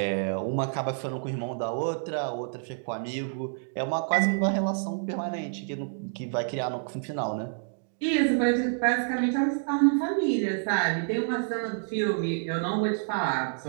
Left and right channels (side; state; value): left; silent; digital silence